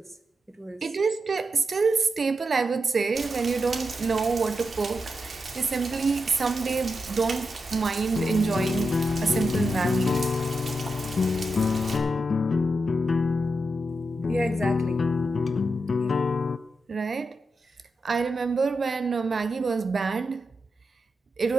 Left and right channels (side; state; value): both; normal; correlation 0.87